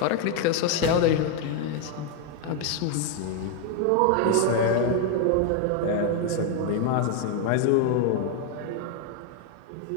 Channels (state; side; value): different; both; correlation 0.01